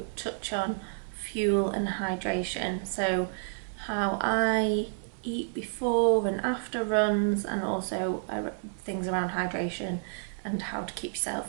touch on fuel and hydration. So how I eat before and after runs, and also things around hydration and how to keep yourself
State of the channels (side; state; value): left; silent; 58 dB below the other